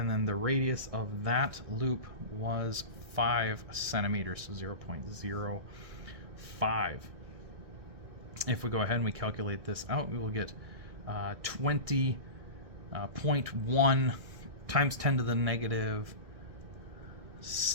then the radius of that loop was 5 centimeters, so 0.05. If we go ahead and we calculate this out, we will get 20.1 times 10 to the negative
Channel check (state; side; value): late; left; 1.6 ms